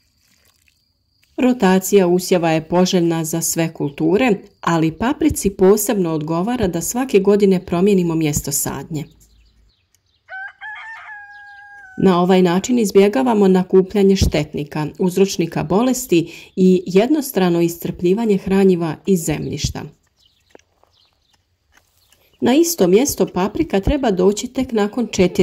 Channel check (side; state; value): both; identical; correlation 1.00